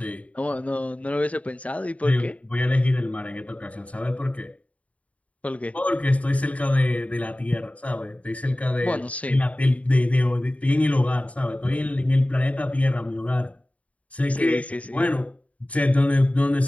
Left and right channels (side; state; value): right; late; 0.067 ms